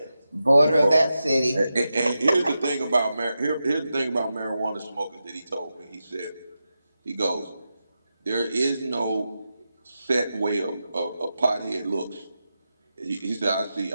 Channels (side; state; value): both; inverted; correlation -0.90